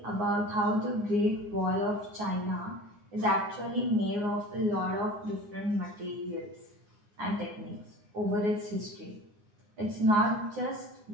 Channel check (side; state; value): left; late; 9.6 ms